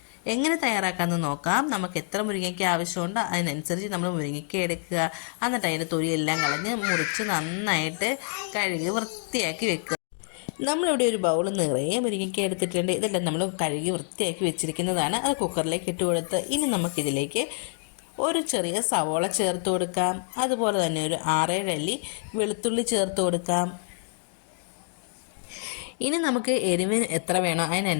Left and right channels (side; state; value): right; silent; 60 dB below the other